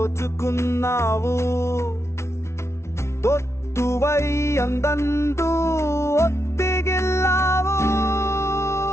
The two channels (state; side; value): late; right; 0.13 ms